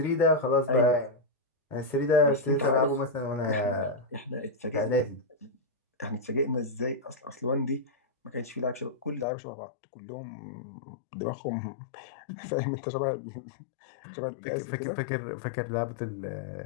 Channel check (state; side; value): drops out; right; at 9.2 s